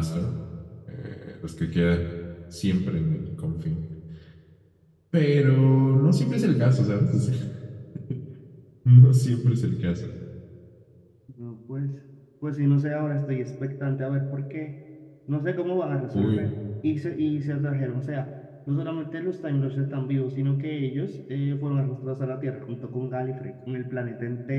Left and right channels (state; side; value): identical; both; correlation 1.00